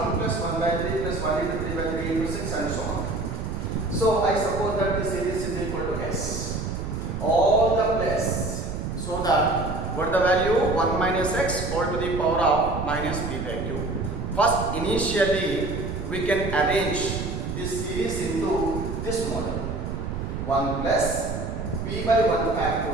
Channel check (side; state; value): right; noise; rumble, 5 dB below the sound